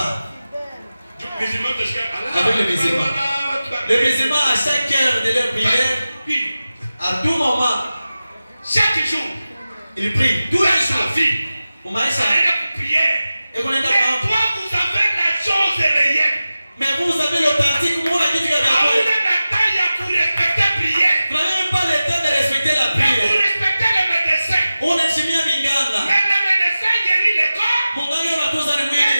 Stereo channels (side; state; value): both; inverted; correlation -0.95